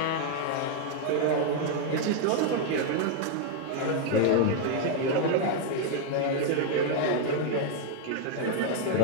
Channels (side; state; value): both; different; correlation 0.00